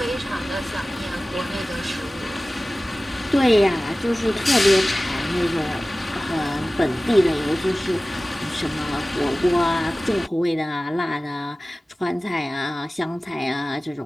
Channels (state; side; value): normal; both; correlation 0.97